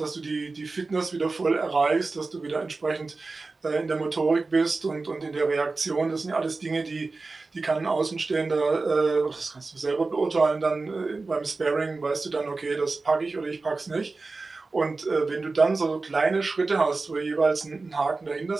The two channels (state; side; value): quieter; left; 3.7 dB